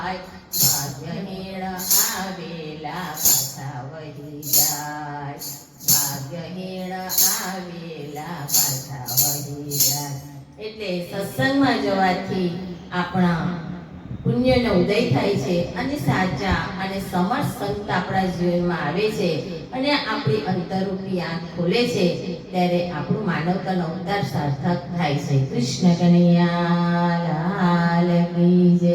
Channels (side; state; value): both; identical; correlation 1.00